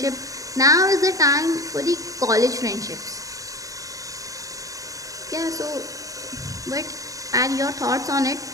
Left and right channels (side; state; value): left; late; 0.16 ms